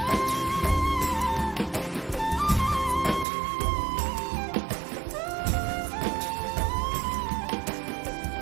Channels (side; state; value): left; drops out; at 3.2 s